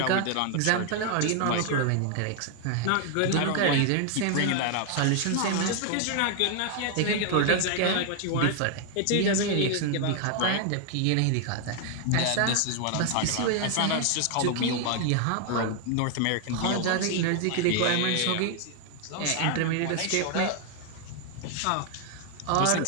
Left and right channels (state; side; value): different; both; correlation 0.00